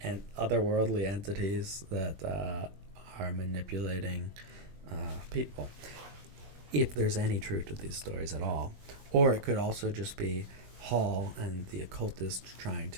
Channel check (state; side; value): late; left; 21 ms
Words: and otherworldly entities that are manipulating people, if there's any truth to these stories at all. Or it could also just be Hall and the occultists trying